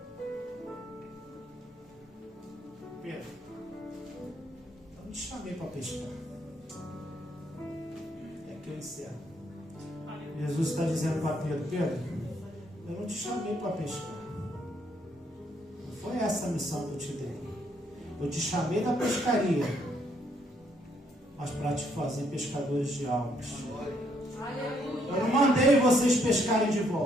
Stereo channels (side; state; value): both; normal; correlation 0.71